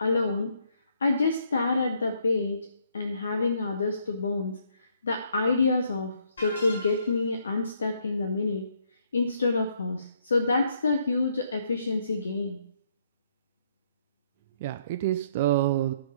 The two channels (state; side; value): inverted; both; correlation -0.69